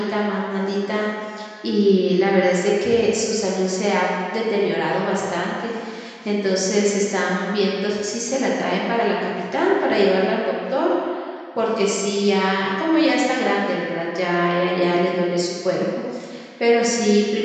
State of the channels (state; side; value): identical; both; correlation 1.00